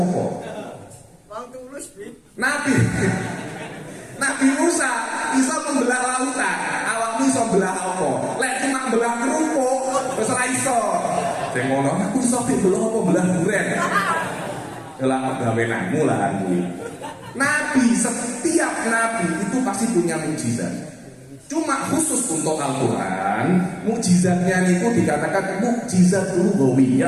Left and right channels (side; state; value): both; identical; correlation 1.00